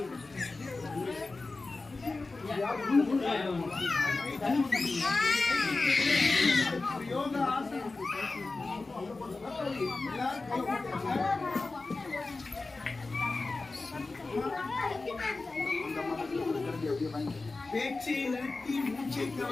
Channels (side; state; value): right; quieter; 3.6 dB